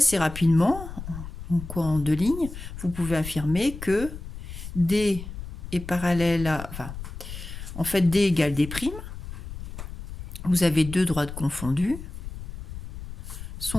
rapidement, en deux lignes, vous pouvez affirmer que D est parallèle à... Enfin, en fait, D égale D'. Vous avez deux droites confondues,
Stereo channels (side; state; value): left; noise; rumble, 10 dB below the sound